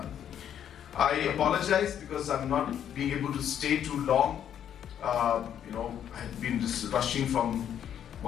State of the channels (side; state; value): right; quieter; 9.6 dB